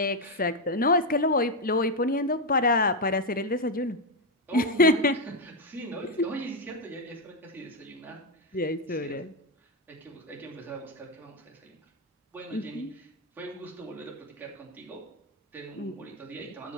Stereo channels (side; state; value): both; normal; correlation 0.04